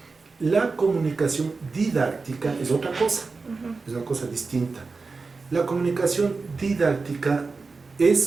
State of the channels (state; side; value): quieter; left; 4.2 dB